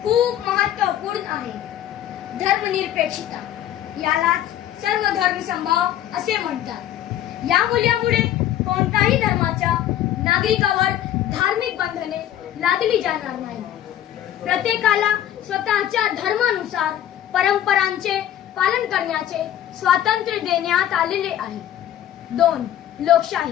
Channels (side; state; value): right; quieter; 11.7 dB